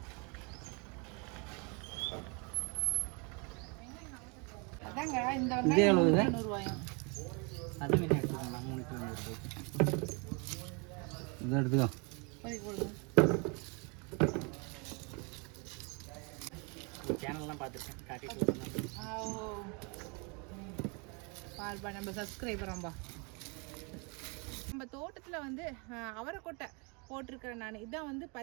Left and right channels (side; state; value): left; quieter; 32.4 dB